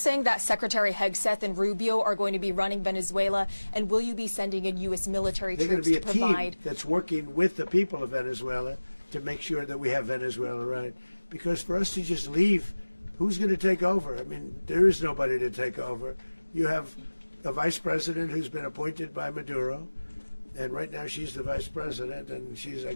that Secretary Hegseth and Rubio are going to be running Venezuela, and will you be sending in U.S. military troops to provide? They're going to be a team that's working with the people of Venezuela to make sure that we have Venezuela right. Because for us to just leave, who's going to take over? I mean, there is nobody to take over. You have a vice president who's been appointed by Maduro, and right now she's the vice president, and she's, I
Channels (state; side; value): inverted; both; correlation -1.00